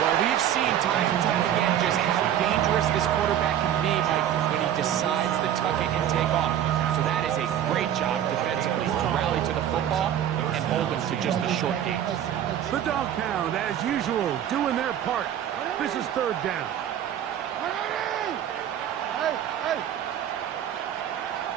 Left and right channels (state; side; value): quieter; left; 10.5 dB